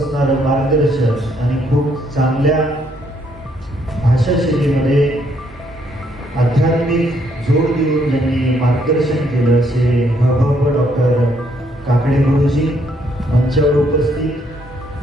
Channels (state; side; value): normal; both; correlation 0.71